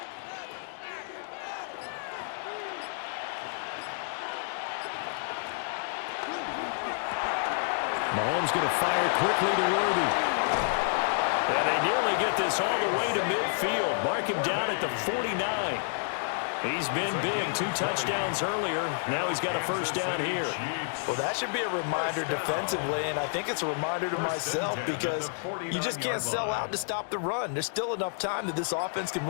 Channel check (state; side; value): silent; right; digital silence